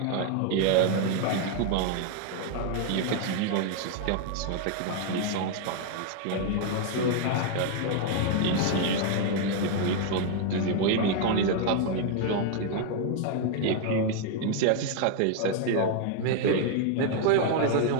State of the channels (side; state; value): both; different; correlation 0.00